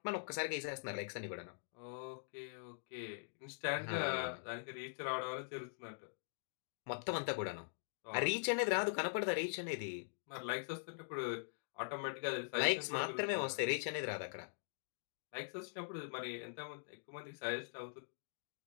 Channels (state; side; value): silent; right; digital silence